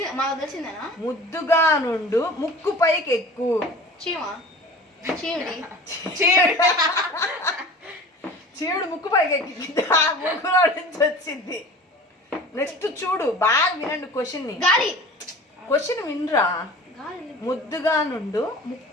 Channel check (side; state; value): both; normal; correlation 0.40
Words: మాకు తెలిసిందేనా? ముద్దుగా నుండు ముక్కు పైకెక్కు. చీవుడు ముక్కు పైకెక్కి ముక్కులో నుంచి వచ్చింది. నెక్స్ట్ చూడు, బాగా వినండి క్వశ్చన్ వినరా. ముద్దుగా నుండు